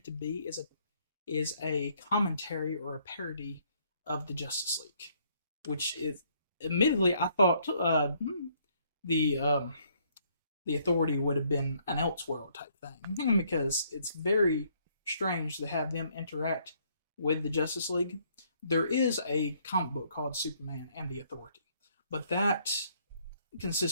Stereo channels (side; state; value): both; inverted; correlation -0.67